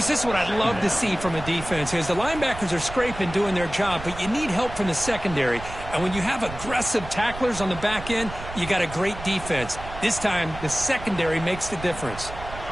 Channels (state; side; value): noise; right; rumble, 12 dB below the sound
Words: this is what I'd love to see from a defense is the linebackers are scraping, doing their job, but you need help from the secondary. And when you have aggressive tacklers on the back end, you got a great defense. This time, the secondary makes the difference.